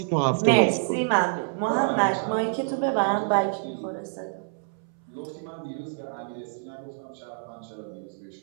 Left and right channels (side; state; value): left; silent; 60 dB below the other